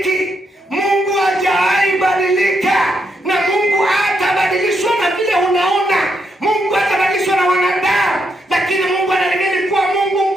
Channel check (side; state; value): both; normal; correlation 0.79